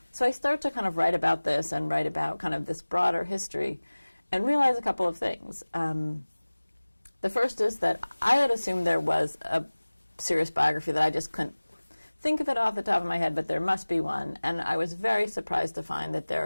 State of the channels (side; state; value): both; inverted; correlation -1.00